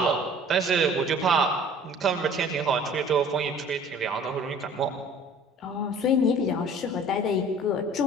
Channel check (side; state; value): both; normal; correlation 0.49